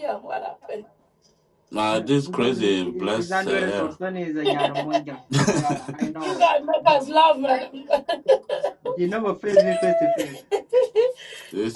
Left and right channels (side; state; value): both; identical; correlation 1.00